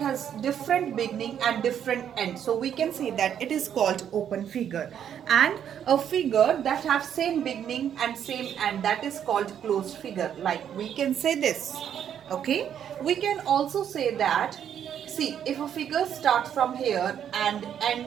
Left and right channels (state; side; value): quieter; left; 9.2 dB